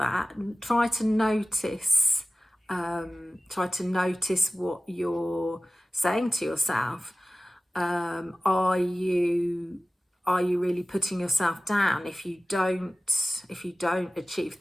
and try to notice what you're saying to yourself. Are you really putting yourself down if you don't achieve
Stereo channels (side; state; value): both; normal; correlation 0.96